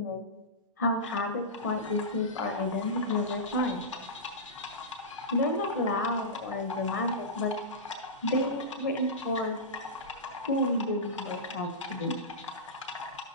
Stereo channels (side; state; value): both; normal; correlation -0.17